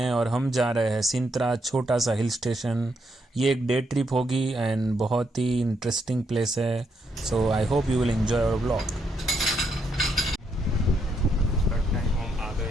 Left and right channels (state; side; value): normal; both; correlation 0.78